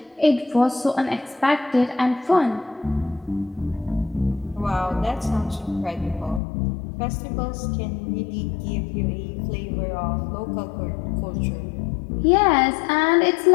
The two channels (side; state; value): right; drops out; at 6.4 s